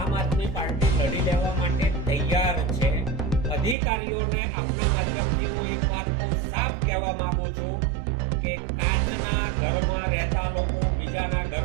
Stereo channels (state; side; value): drops out; left; at 3.8 s